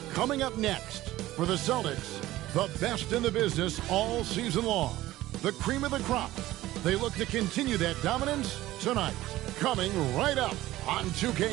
Coming up next, for the Celtics, the best in the business all season long. The cream of the crop. They look to continue that dominance tonight. Coming right up on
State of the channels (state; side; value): quieter; left; 16.1 dB